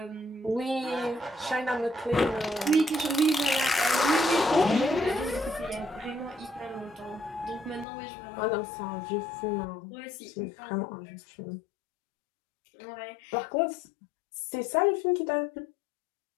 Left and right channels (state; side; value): drops out; right; at 7.9 s